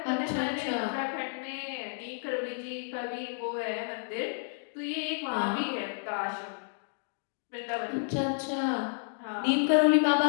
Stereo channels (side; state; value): right; silent; digital silence